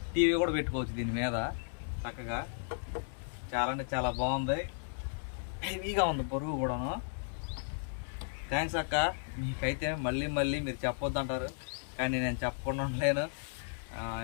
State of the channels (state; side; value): silent; right; digital silence